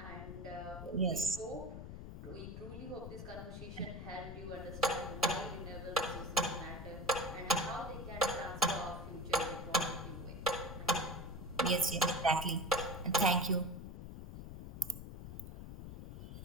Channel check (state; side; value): noise; left; rumble, 10 dB below the sound